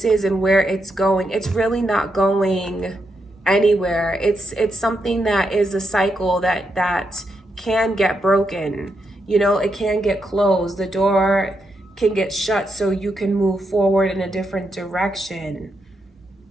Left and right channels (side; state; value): both; normal; correlation 0.82